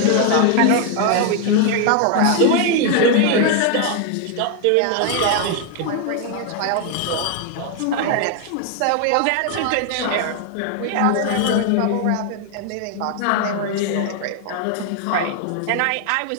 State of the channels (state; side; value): different; both; correlation 0.00